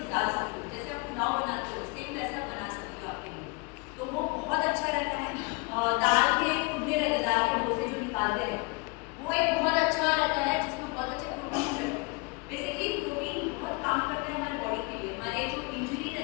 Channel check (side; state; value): right; quieter; 28.1 dB